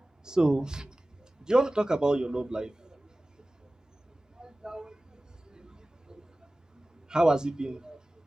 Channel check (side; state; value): both; normal; correlation 0.97